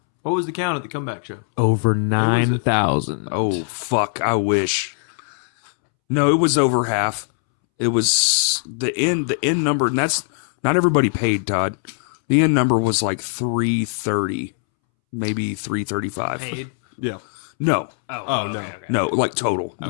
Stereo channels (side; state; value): right; silent; 65 dB below the other